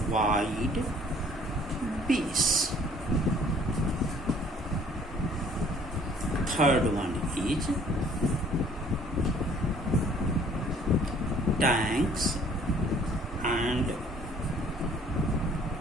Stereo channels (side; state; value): both; normal; correlation 0.56